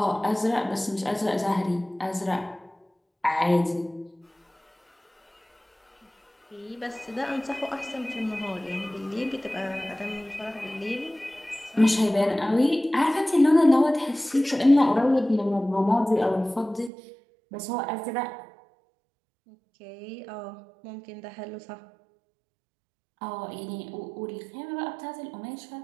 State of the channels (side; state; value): left; drops out; at 16.9 s